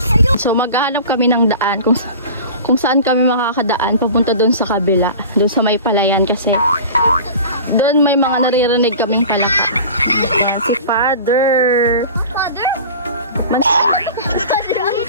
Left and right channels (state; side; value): inverted; both; correlation -0.38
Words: So, maghahanap kami ng daan kung saan kami makakadaan papunta doon sa kabila. Doon sa may palayan kasi doon may mga naririnig kaming palaka. Ayan, si Father. Father? Father ang